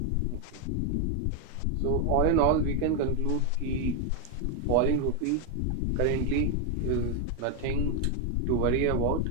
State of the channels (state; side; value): different; both; correlation 0.01